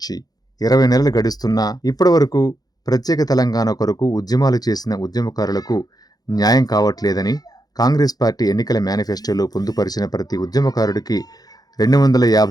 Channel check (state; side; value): late; right; 0.19 ms